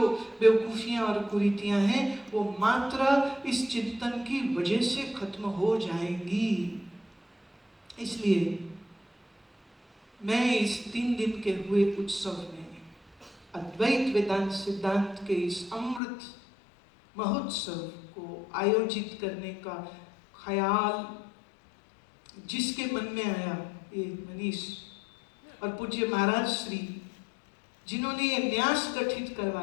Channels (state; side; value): drops out; right; at 16.0 s